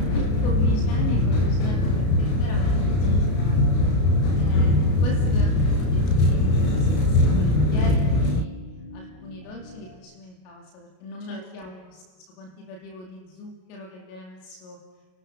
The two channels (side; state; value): right; late; 33 ms